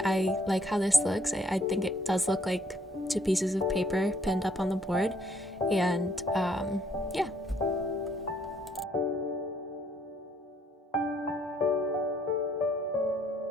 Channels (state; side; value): normal; both; correlation 0.65